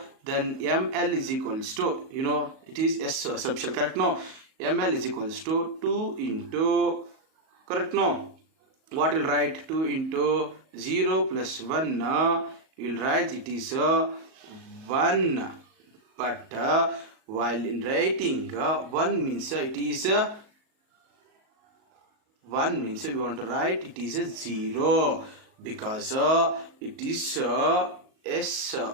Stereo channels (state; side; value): late; left; 37 ms